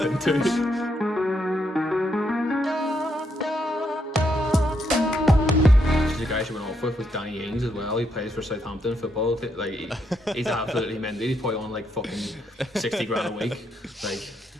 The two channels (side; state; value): both; normal; correlation 0.77